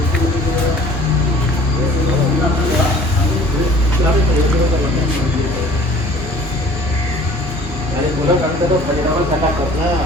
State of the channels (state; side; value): normal; both; correlation 0.50